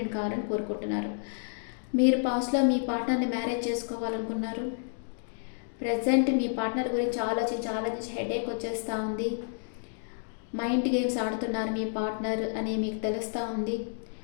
కావాలని కోరుకుంటున్నారు. మీరు పాస్ట్లో మీ పార్ట్నర్ని మ్యారేజ్ చేసుకోవాలనుకున్నారు. ప్రజెంట్ మీ పార్ట్నర్ గురించి ఆలోచించి హెడేక్ వచ్చేస్తూ ఉంది. మైండ్ గేమ్స్ ఆడుతున్నారు మీ పార్ట్నర్ అని మీకు తెలుస్తూ ఉంది.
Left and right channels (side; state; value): right; silent; digital silence